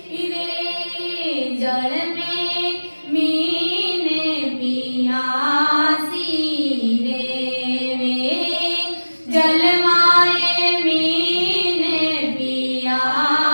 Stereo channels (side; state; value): both; inverted; correlation -1.00